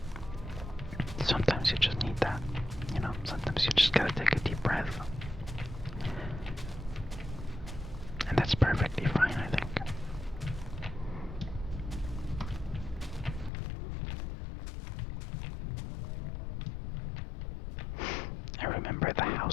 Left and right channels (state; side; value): drops out; right; at 13.5 s